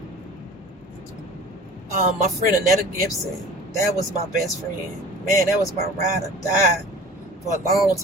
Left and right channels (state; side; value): normal; both; correlation 0.42